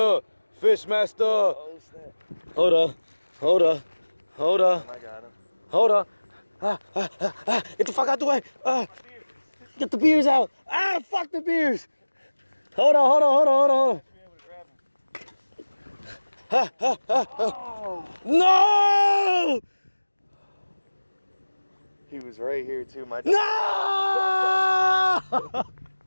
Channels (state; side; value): inverted; both; correlation -1.00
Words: Fish master. Oh, snap. Hold up. Hold up. Hold up. I got him. Hold up. Get the fuck out the way. Get the beers out. Fuck the beers. Hold on, hold on, hold on, hold on, hold on. No! He was right here too. My No!